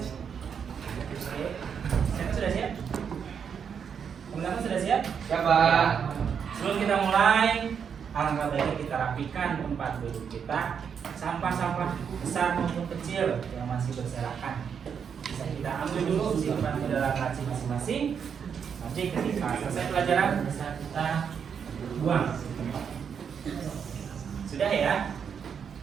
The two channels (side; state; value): left; quieter; 7.2 dB